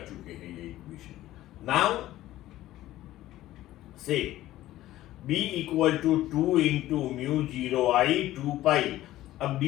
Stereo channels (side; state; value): right; quieter; 15.0 dB